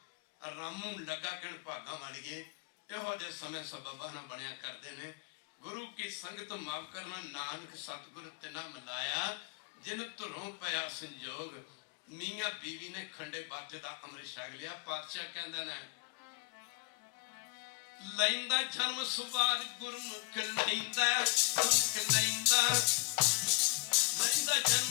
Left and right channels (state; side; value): quieter; right; 31.3 dB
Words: ਰਾਮੂ ਲੱਗਾ ਕਹਿਣ ਭਾਗਾਂ ਵਾਲੀਏ। ਇਹੋ ਜਿਹੇ ਸਮੇਂ ਸਬਬਾਂ ਨਾਲ ਬਣਿਆ ਕਰਦੇ ਨੇ। ਗੁਰੂ ਕੀ ਸੰਗਤ ਮਾਫ ਕਰਨਾ, ਨਾਨਕ ਸਤਿਗੁਰ ਤਿਨਾ ਮਿਲਾਇਆ ਜਿਨ ਧੁਰੋਂ ਪਿਆ ਸੰਜੋਗ। ਮੀਆਂ ਬੀਵੀ ਨੇ ਖੰਡੇ ਬਾਟੇ ਦਾ ਅੰਮ੍ਰਿਤ ਛਕ ਲਿਆ। ਪਾਤਸ਼ਾਹ ਕਹਿੰਦੇ ਨੇ ਲੈਂਦਾ ਜਨਮ ਸਵਾਰ ਗੁਰਮੁਖ ਲੈਂਦਾ ਗੁਰਮੁਖ ਲੈਂਦਾ